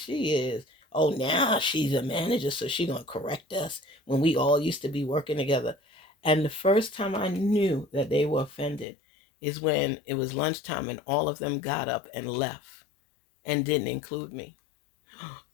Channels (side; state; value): right; drops out; at 8.8 s